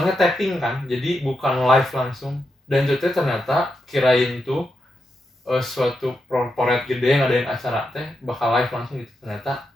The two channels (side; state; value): both; normal; correlation 0.85